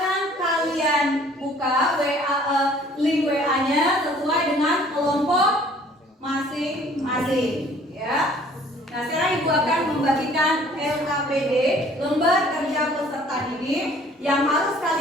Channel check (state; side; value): normal; both; correlation 0.55